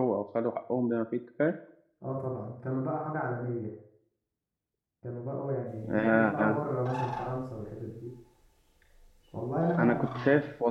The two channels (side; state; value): both; identical; correlation 1.00